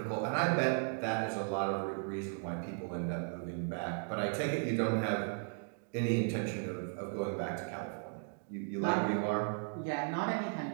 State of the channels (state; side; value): silent; left; 54 dB below the other